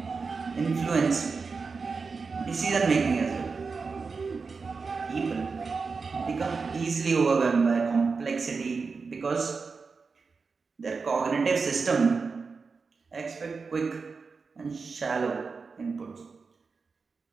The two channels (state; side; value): quieter; left; 4.7 dB